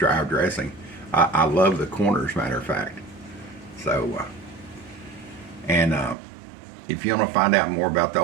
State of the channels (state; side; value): drops out; left; at 6.2 s